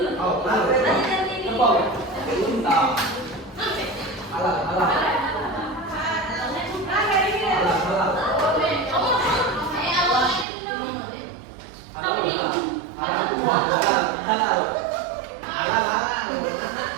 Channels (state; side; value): drops out; left; at 10.5 s